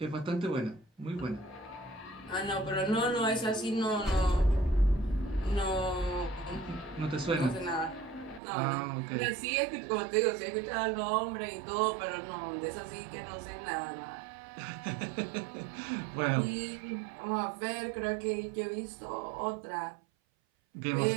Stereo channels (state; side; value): drops out; left; at 8.4 s